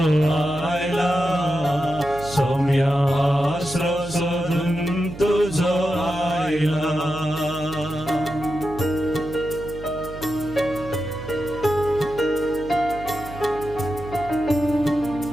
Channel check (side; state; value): right; noise; hum, 14 dB below the sound